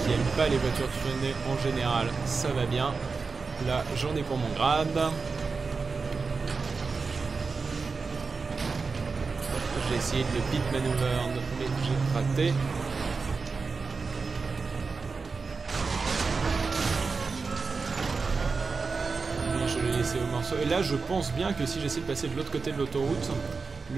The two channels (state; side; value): quieter; left; 4.4 dB